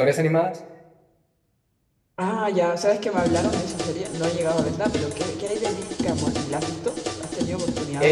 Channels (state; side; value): identical; both; correlation 1.00